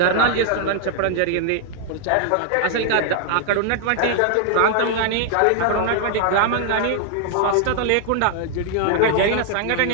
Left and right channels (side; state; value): both; different; correlation 0.00